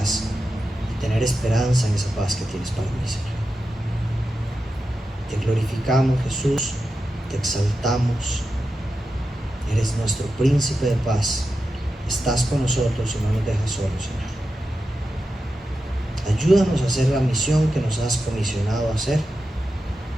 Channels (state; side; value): normal; both; correlation 0.90